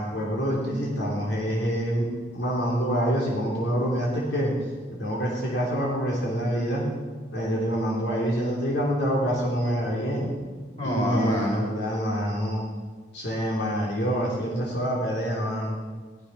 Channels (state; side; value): normal; both; correlation 0.63